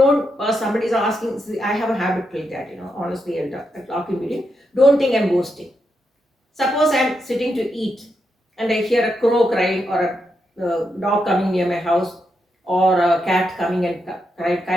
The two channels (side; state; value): both; normal; correlation 0.83